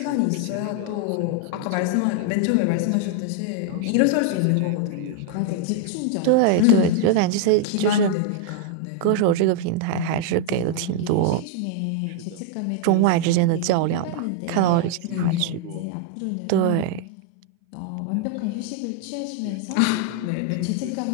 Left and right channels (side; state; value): both; different; correlation 0.00